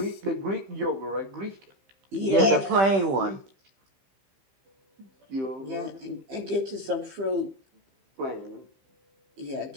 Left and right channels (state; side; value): late; left; 15 ms